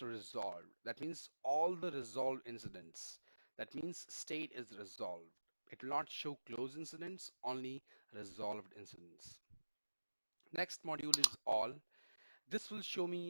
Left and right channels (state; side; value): inverted; both; correlation -1.00